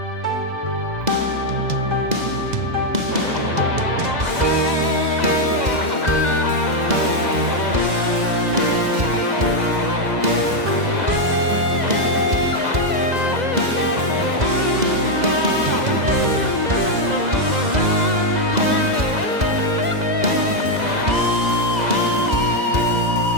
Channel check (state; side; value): late; left; 2.0 ms